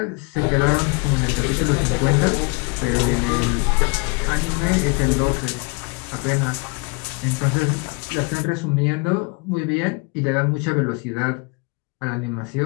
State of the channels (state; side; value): quieter; right; 30.7 dB